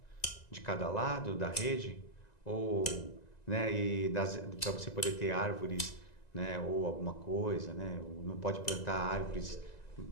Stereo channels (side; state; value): right; late; 1.9 ms